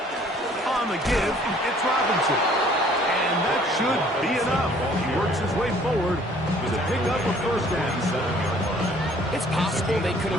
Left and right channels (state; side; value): normal; both; correlation 0.57